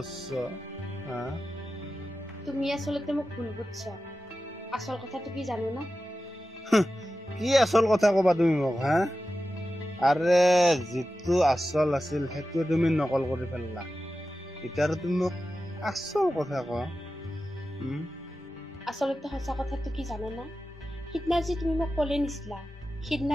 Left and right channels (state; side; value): normal; both; correlation 0.93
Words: তুমি আচলতে মোক ভুল বুঝছ আসল কথাটো কি জানো না কি আসল কথা কবা তুমি মোক আৰে যিটো আসল আছিল সেইটো তুমি নকল কৰি ফেললা এতিয়া তুমি মোক আসল কথা ক আচলতে সঁচা কথাটো কি জানো না সিদিনা যে তুমি মোক কলে নিছিলা